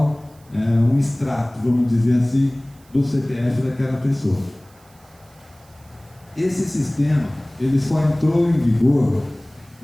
é um extrato, vamos dizer assim, do CPF daquela pessoa. Esse sistema, ele só entrou em vigor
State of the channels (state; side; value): noise; right; hiss, 30 dB below the sound